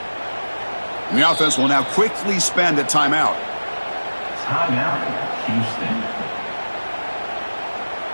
And the offense will now quickly spend a timeout. Timeout, Houston.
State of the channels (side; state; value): both; inverted; correlation -1.00